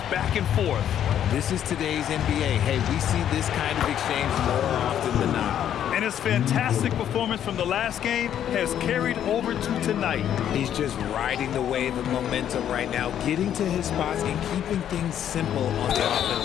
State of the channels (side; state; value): right; quieter; 10.1 dB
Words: back and forth. This is today's NBA. Hey, we see this kind of exchange more often than not. And his fantastic performance from the last game has carried over to tonight. He's just riding the wave of momentum right now, getting to his spots and keeping things simple on the